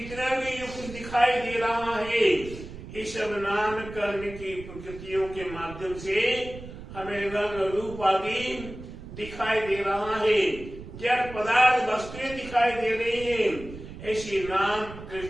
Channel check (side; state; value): right; noise; rumble, 13 dB below the sound